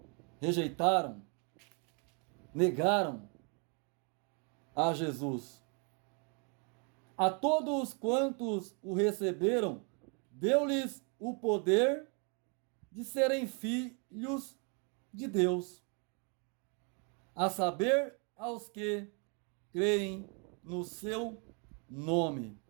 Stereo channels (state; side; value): quieter; left; 36.4 dB